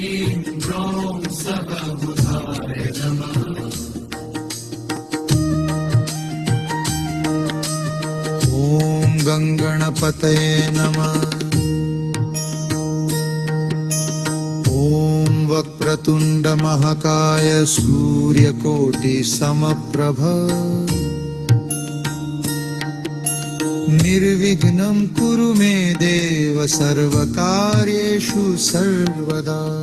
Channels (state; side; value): identical; both; correlation 1.00